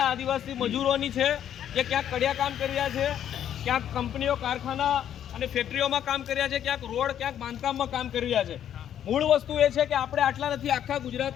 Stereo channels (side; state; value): right; quieter; 10.1 dB